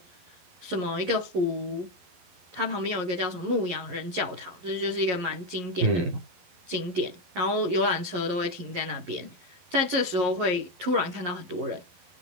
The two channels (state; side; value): late; left; 11 ms